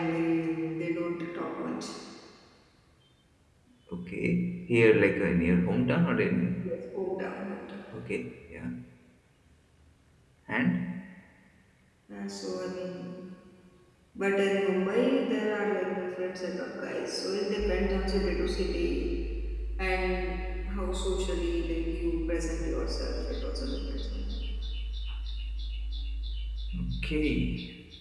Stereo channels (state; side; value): identical; both; correlation 1.00